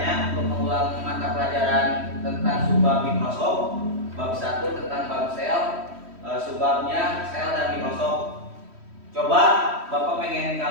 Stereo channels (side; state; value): left; late; 3.1 ms